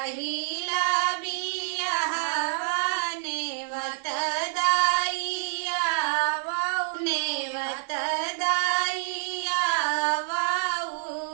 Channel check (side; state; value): left; silent; 60 dB below the other